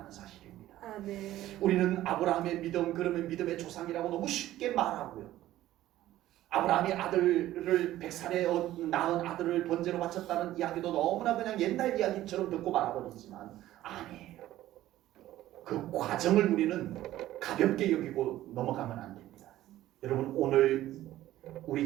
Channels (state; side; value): quieter; left; 14.4 dB